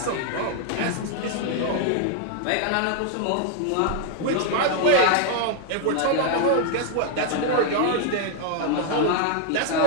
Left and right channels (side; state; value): both; different; correlation 0.00